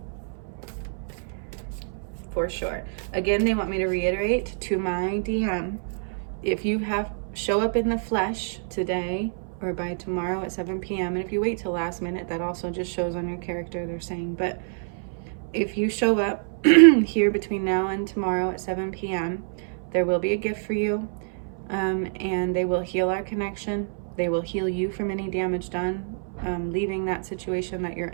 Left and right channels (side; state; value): left; silent; 61 dB below the other